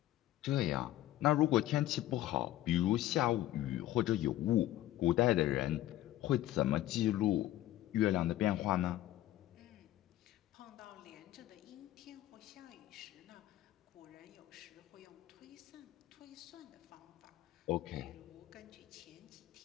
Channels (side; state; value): right; quieter; 14.3 dB